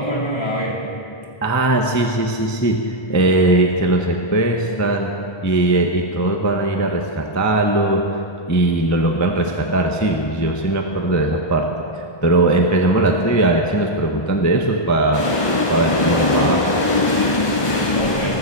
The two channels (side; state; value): right; late; 1.2 ms